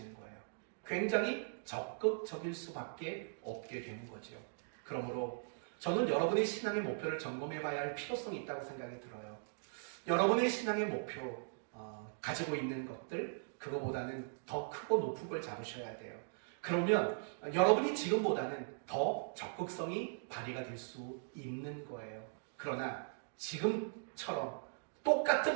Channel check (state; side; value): silent; left; digital silence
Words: 거예요. 굉장히 적극적일 수밖에 없게 되는 거죠. 그러므로 저는 여러분의 신앙의 목표를 점검해 봐야 할 필요성이 있다고 생각이 들어요. 여러분의 신앙의 목표 가지고 있는 것들 그거보다는 더 크고 높은 걸 잡으셔야 돼요. 그러면 여러분이 지금보다는 더 적극성이 발휘가 될 수 있는 거예요. 그러나 지금처럼